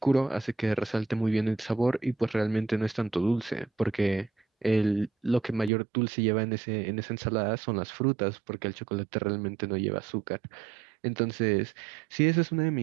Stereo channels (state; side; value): drops out; left; at 5.7 s